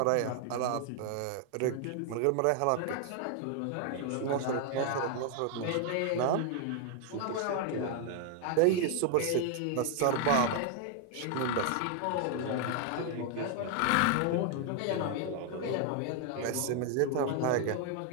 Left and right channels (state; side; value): different; both; correlation 0.00